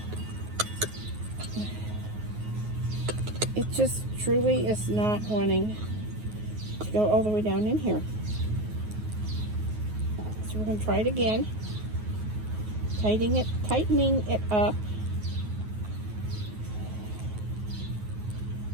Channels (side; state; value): left; late; 9.4 ms